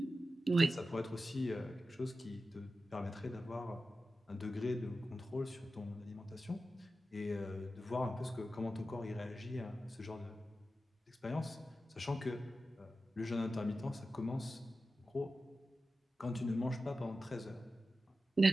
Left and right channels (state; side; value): normal; both; correlation 0.93